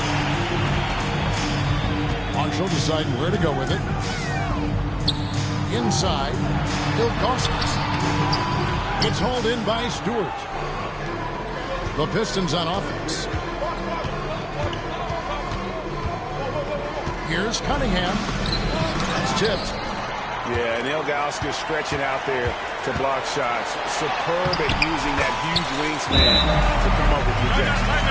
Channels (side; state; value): both; identical; correlation 1.00